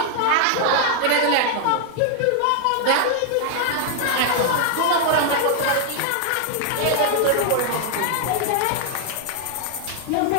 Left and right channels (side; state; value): both; different; correlation 0.00